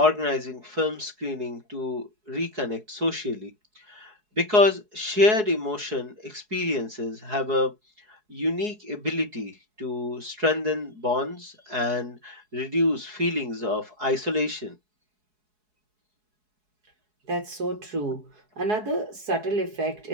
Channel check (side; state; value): left; late; 4.7 ms